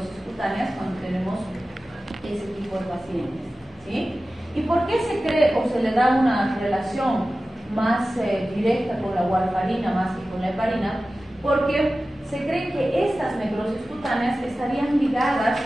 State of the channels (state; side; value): normal; both; correlation 0.95